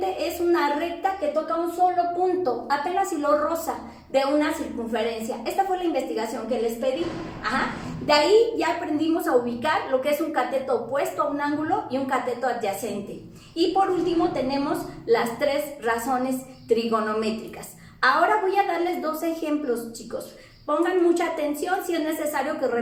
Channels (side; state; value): both; identical; correlation 1.00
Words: es una recta que toca un solo punto, apenas si lo roza, de una circunferencia. Esta fue la investigación que les pedí. De ahí ya aprendimos a ubicar lo que es un cateto opuesto a un ángulo y un cateto adyacente. Y por último tenemos las 3 razones trigonométricas. Ahora voy a darles 2 ejemplos, chicos. Pongan mucha atención, si es necesario que